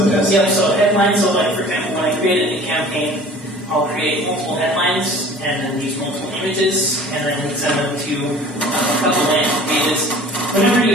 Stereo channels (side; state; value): both; normal; correlation 0.46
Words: tests? Yep, so headlines, so like for example, when I create a new campaign, I'll create multiple headlines and then use multiple images and then send them to a couple landing pages. Whenever you